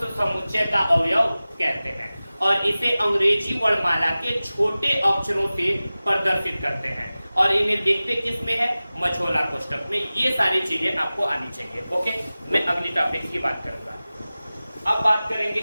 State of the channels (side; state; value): both; inverted; correlation -0.97